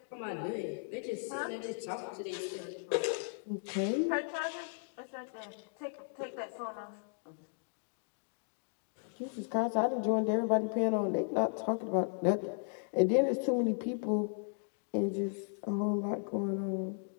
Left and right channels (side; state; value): right; silent; digital silence